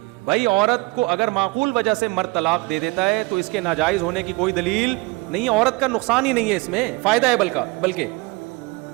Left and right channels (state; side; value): quieter; left; 25.0 dB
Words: بھائی عورت کو اگر معقول وجہ سے مرد طلاق دے دیتا ہے تو اس کے ناجائز ہونے کی کوئی دلیل نہیں ہے، عورت کا نقصان ہی نہیں ہے، اس میں فائدہ ہے بلکہ.